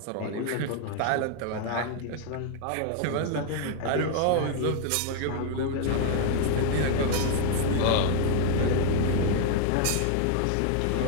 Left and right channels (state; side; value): different; both; correlation 0.00